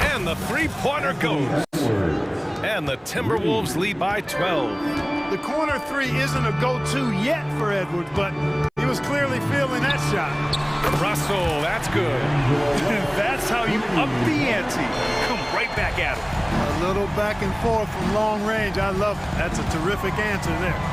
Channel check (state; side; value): identical; both; correlation 1.00